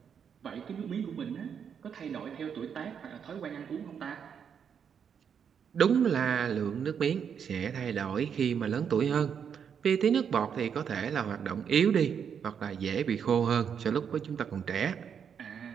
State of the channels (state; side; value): quieter; left; 7.5 dB